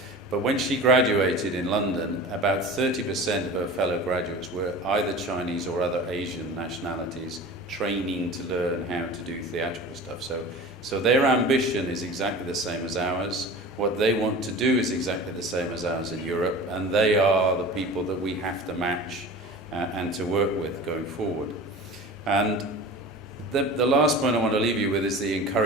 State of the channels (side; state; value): both; normal; correlation 0.37